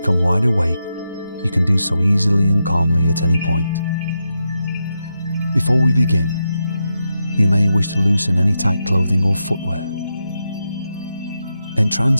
wide awake, you can do so easily and calmly at any point. Before we begin, you may wish to loosen any tight clothing or footwear.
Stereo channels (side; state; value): both; inverted; correlation -0.86